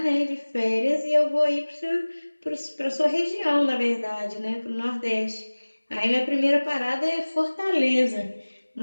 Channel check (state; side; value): inverted; both; correlation -1.00